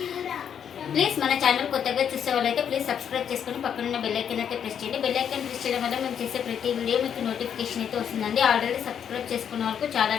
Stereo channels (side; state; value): right; quieter; 8.3 dB